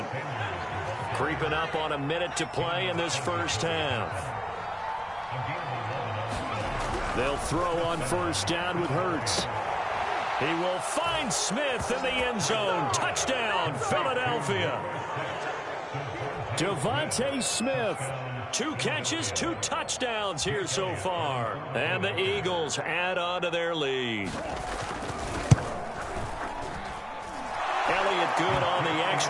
Creeping up on a minute to play in this first half. They'll throw on 1st down with Hurts. He will find Smith in the end zone. Touchdown, Philadelphia. Devontae Smith. 2 catches, 2 touchdowns here so far. And the Eagles add on to their lead. Elliott good on the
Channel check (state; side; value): identical; both; correlation 1.00